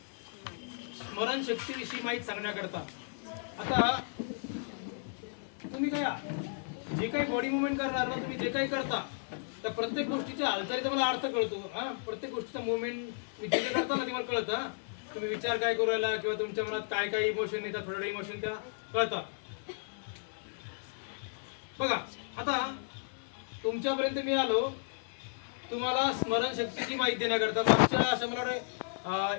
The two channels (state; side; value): silent; right; digital silence